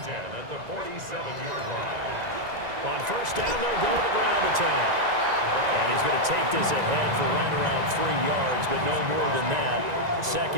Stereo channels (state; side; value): late; left; 1.9 ms